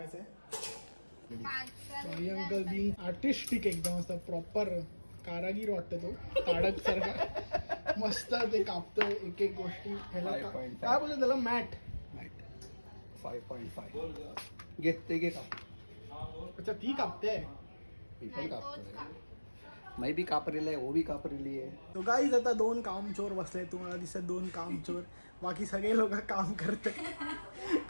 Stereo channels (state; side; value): inverted; both; correlation -1.00